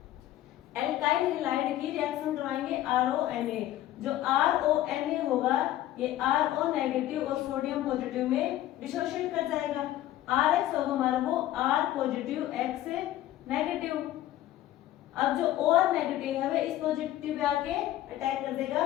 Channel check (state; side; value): quieter; right; 13.8 dB